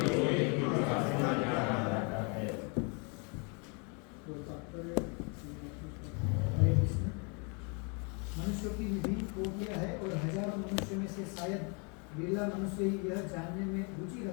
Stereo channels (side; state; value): right; quieter; 34.5 dB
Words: मनुष्यों की विभिन्न कोटियां है और हजारों मनुष्यों में से शायद बिरला मनुष्य ही यह जानने में रुचि